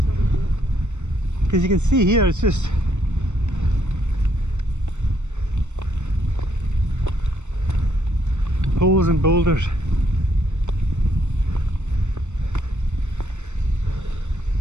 Because you can see here, it's just holes and boulders.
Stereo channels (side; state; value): left; late; 0.84 ms